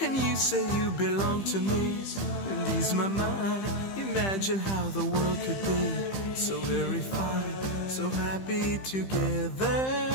and you say you belong to me, and ease my mind. Imagine how the world could be so very fine, so happy together.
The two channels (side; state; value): right; late; 15 ms